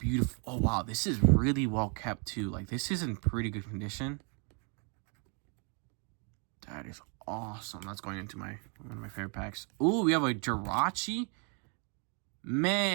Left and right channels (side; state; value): left; quieter; 37.7 dB